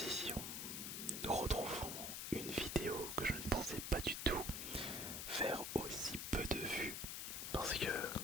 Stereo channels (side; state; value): left; noise; hiss, 4 dB below the sound